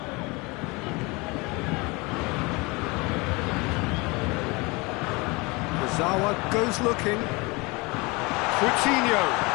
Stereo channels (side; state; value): right; quieter; 25.9 dB